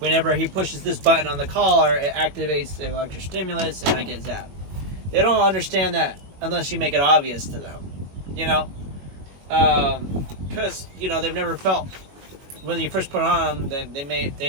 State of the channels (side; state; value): left; late; 21 ms